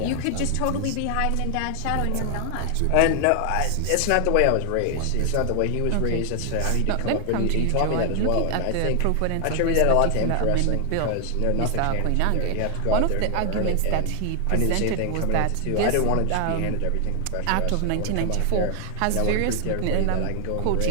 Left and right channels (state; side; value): different; both; correlation 0.00